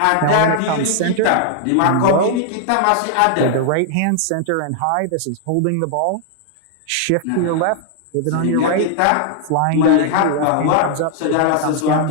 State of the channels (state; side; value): different; both; correlation -0.01